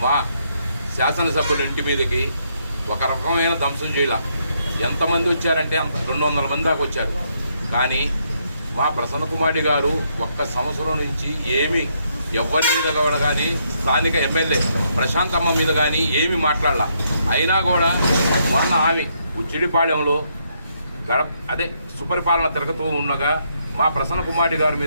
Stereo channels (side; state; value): both; inverted; correlation -0.75